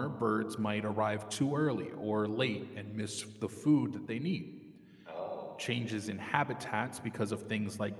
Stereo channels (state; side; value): identical; both; correlation 1.00